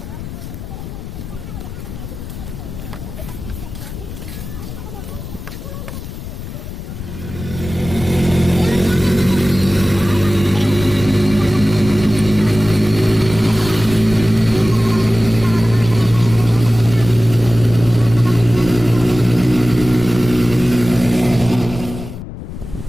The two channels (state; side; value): noise; left; rumble, 10 dB below the sound